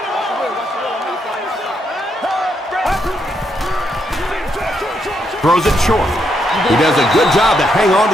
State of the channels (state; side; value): normal; both; correlation 0.78